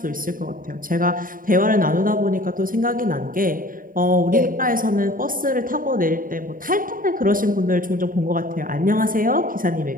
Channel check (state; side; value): late; left; 0.40 ms